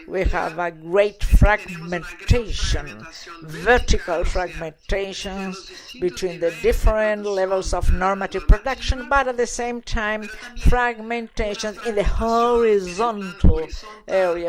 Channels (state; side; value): identical; both; correlation 1.00